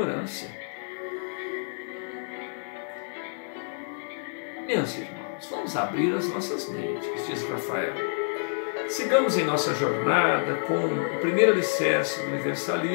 Meus irmãos, vamos abrir as nossas mentes, diz Rafael. Sigamos em nossa jornada com o primeiro alicerce do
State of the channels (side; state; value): right; silent; digital silence